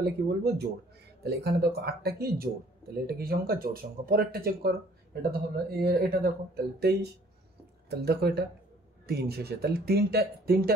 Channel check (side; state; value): both; normal; correlation 0.57